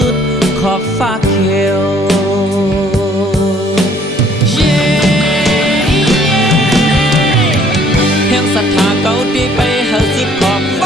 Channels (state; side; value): normal; both; correlation 0.60